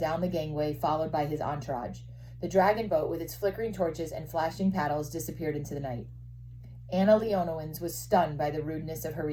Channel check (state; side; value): identical; both; correlation 1.00